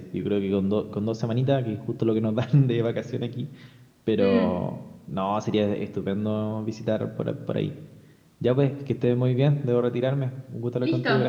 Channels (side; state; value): both; identical; correlation 1.00